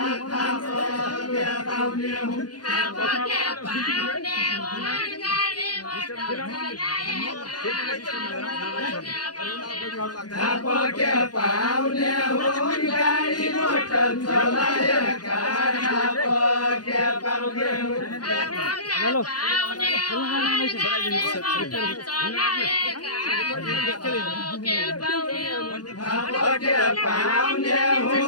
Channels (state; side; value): late; right; 0.69 ms